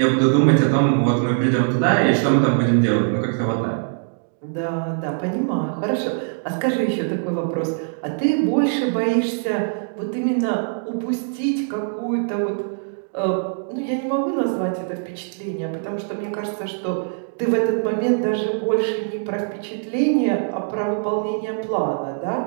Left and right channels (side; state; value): left; silent; digital silence